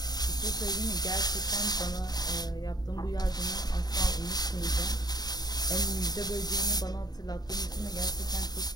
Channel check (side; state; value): right; late; 0.19 ms